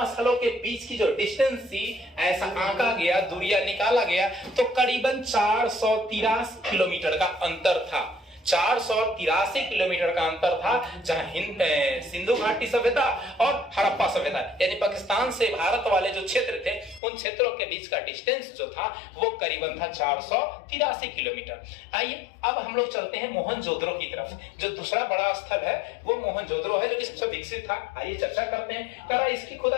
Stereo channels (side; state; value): right; drops out; at 17.0 s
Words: स्थलों के बीच की जो डिस्टेंस थी, ऐसा आंका गया, दूरिया निकाला गया, तो करीबन 483 किलोमीटर का अंतर था। 483 किलोमीटर का अंतर था, जहां सिंधु घाटी सभ्यता और हड़प्पा सभ्यता यानी पाकिस्तान से भारत वाले जो क्षेत्र थे, उन क्षेत्रों के बीच का डिस्टेंस जो था वो करीबन था 483 किलोमीटर। आइए अब हम लोग चलते हैं मोहनजोदड़ो की तरफ। जो दूसरा बड़ा स्थल है वो मोहनजोदड़ो है, जो कि सबसे विकसित था। आइए चर्चा करते हैं। करा इसकी